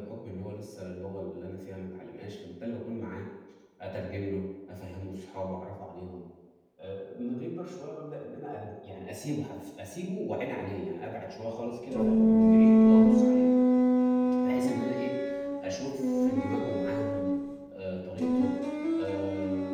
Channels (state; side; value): identical; both; correlation 1.00